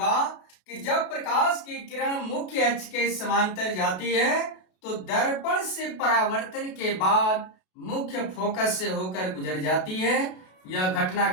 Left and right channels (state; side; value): late; right; 32 ms